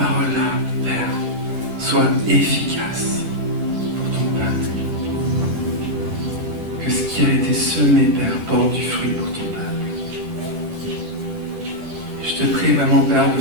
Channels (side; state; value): left; late; 10 ms